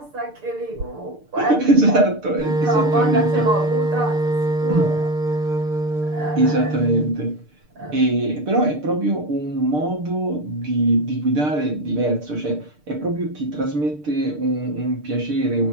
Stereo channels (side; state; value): left; late; 6.7 ms